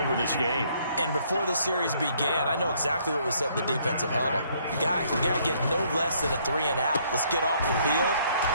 this game. And before the series began, I know exactly what was said in the defensive huddle. Guys, we got to get no less than a 3 and out. Let's get off the field.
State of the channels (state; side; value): inverted; both; correlation -0.66